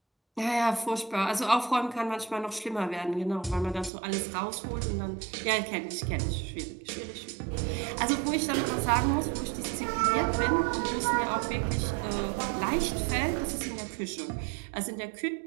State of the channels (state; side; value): drops out; left; at 3.9 s